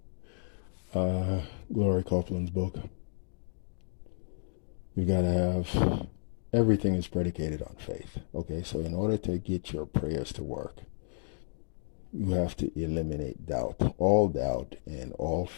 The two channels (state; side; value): silent; right; digital silence